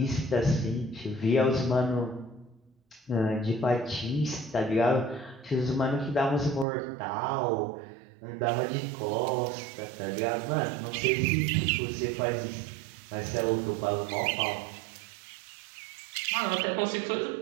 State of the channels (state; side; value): drops out; left; at 6.7 s